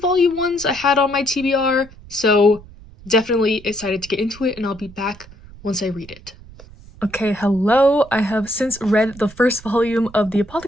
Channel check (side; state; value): right; noise; rumble, 20 dB below the sound